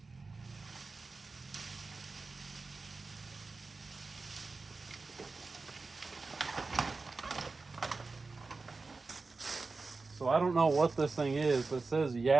So I don't know what this thing is, but it says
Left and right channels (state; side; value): quieter; left; 3.9 dB